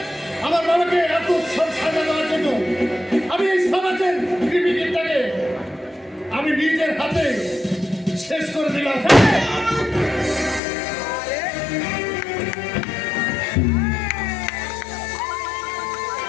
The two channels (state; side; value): drops out; right; at 10.6 s